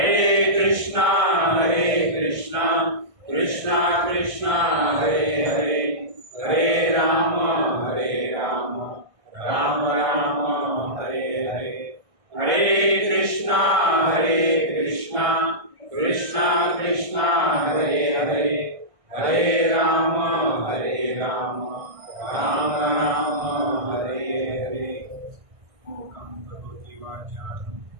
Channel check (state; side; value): late; left; 1.6 ms